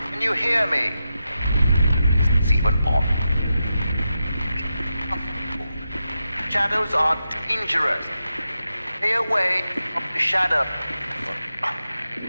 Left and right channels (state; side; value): inverted; both; correlation -0.89